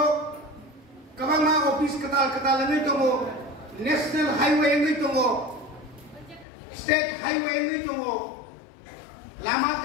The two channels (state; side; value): drops out; right; at 6.5 s